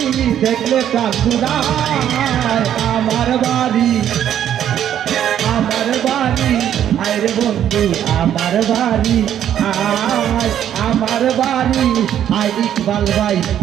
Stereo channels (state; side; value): quieter; left; 10.3 dB